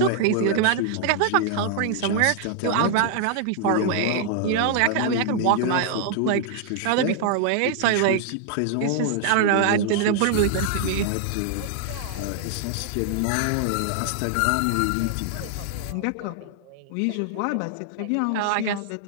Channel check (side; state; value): both; different; correlation -0.01